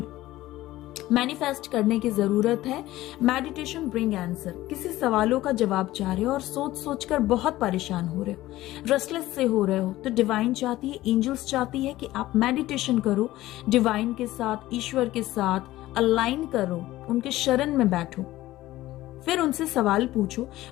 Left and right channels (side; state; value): right; quieter; 16.2 dB